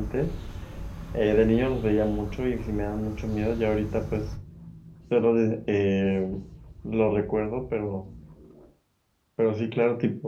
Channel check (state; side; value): identical; both; correlation 1.00